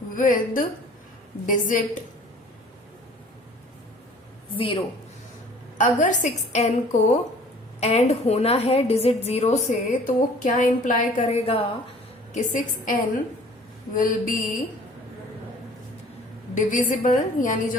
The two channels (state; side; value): normal; both; correlation 0.51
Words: with digit 0, अगर 6n को एंड होना है डिजिट 0 से तो वो क्या इंप्लाई करेगा कि 6n विल बी डिविजिबल, यानी